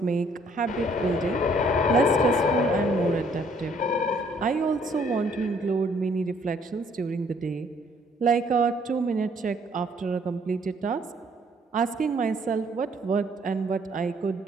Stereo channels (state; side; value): normal; both; correlation 0.63